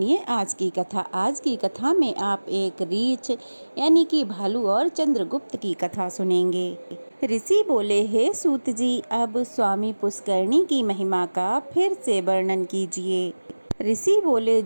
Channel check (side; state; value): both; inverted; correlation -1.00